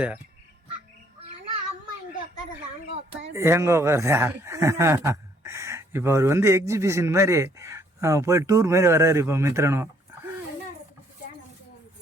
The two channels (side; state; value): both; normal; correlation 0.65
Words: எங்கே உட்காருதா? இப்போ அவர் எக்ஸிபிஷன் மாதிரி போய் டூர் மாதிரி வர்றாரு இப்போ மித்ரனும்.